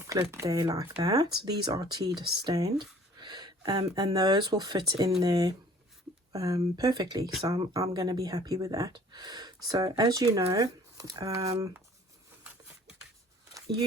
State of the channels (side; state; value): both; normal; correlation 0.52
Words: there like that. These are tea stained, and those will fit in there perfectly. So I'm going to be happy with that. So as you know,